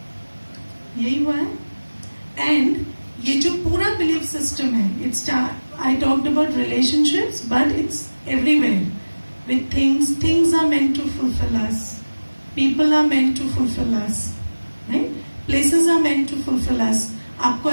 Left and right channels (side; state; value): both; inverted; correlation -1.00